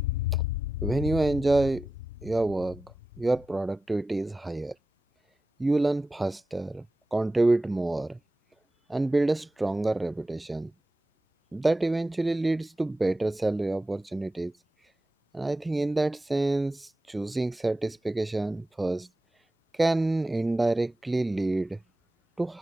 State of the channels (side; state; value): both; normal; correlation 0.93